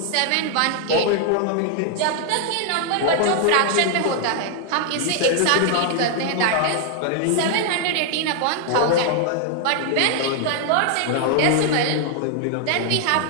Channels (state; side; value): different; both; correlation 0.00